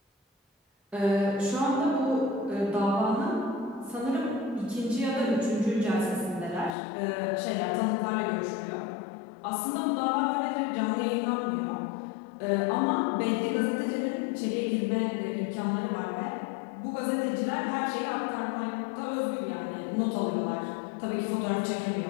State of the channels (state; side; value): drops out; right; at 6.7 s